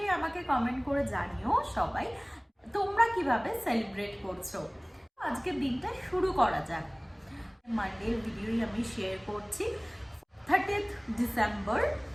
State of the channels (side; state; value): both; identical; correlation 1.00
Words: আমাকে কমেন্ট করে জানিও সবাই তোমরা কিভাবে সেলিব্রেট করছো। আজকের দিনটা শুরু করা যাক। মানডের ভিডিওই আমি শেয়ার করছি, 30th ডিসেম্বর,